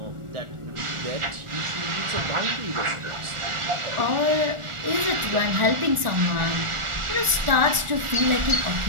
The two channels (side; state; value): left; late; 1.4 ms